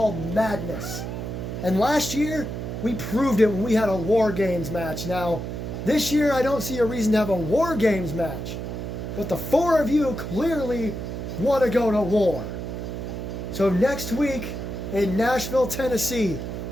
Madness. And last year, we proved it when we had a War Games match. Now, this year I don't see a reason to have a War Games match. But the four of you clearly want to go to war. So next week in Nashville, Tennessee,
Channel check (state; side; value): noise; right; hum, 6 dB below the sound